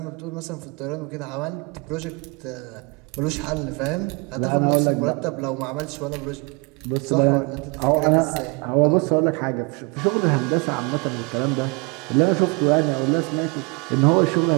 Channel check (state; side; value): quieter; left; 29.2 dB